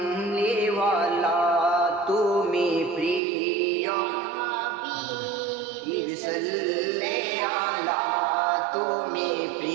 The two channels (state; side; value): drops out; left; at 3.2 s